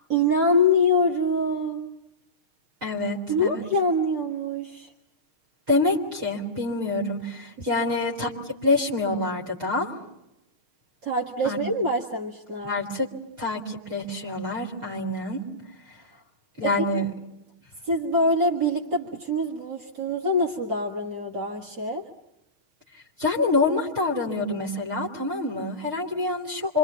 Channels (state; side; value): late; left; 6.4 ms